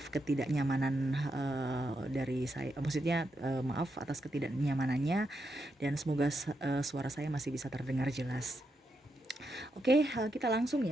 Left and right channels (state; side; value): normal; both; correlation 0.83